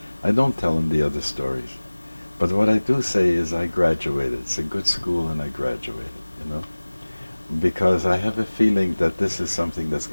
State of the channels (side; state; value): both; inverted; correlation -1.00